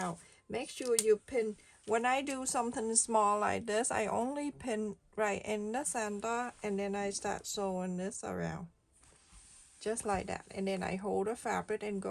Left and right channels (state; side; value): identical; both; correlation 1.00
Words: Make sure you pin. When I do something small like this, I only pin right in the center, and then I start sewing this around just like that, and then I hold the fabric and